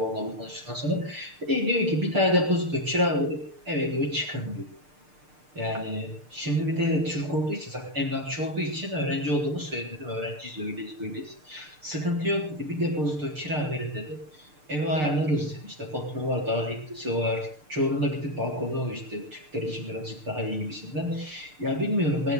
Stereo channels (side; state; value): left; late; 6.7 ms